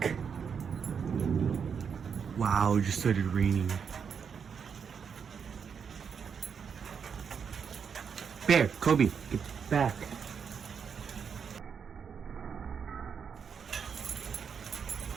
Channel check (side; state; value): left; quieter; 6.7 dB